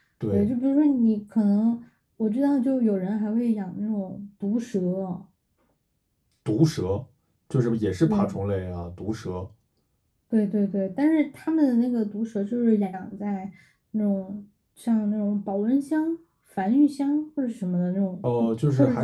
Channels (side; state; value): both; identical; correlation 1.00